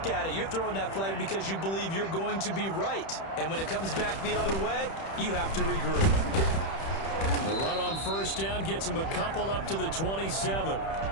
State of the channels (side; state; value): right; late; 31 ms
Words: at it, you're throwing that flag because you believe you're going to be right. And when it comes back the other way, you have to regroup. The run on 1st down gets him a couple up to the 27.